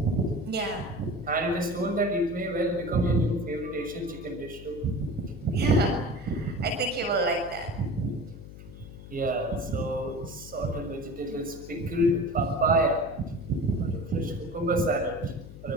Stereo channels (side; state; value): left; noise; hum, 15 dB below the sound